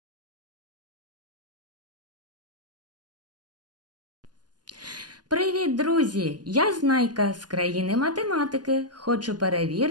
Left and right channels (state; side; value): late; left; 0.70 ms